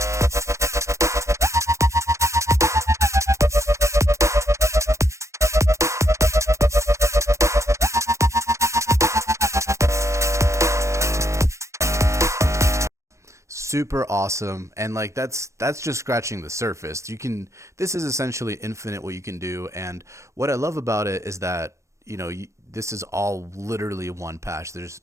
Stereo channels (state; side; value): late; left; 0.14 ms